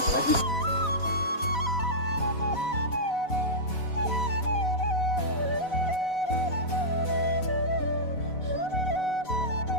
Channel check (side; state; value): right; late; 4.0 ms